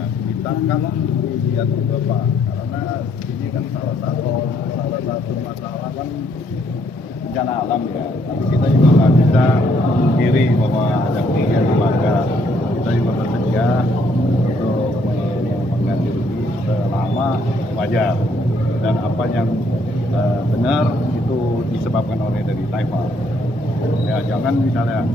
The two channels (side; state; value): both; normal; correlation 0.69